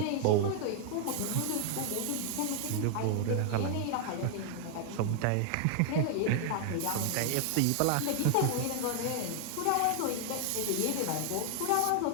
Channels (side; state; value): both; different; correlation 0.00